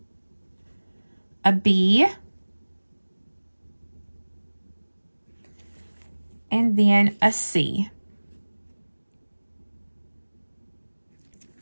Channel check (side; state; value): both; inverted; correlation -1.00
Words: A B, and then a C.